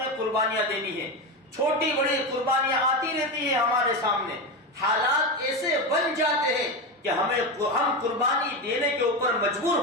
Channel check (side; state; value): both; normal; correlation 0.17